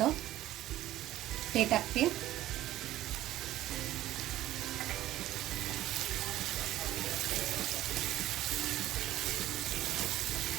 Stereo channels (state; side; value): quieter; left; 14.6 dB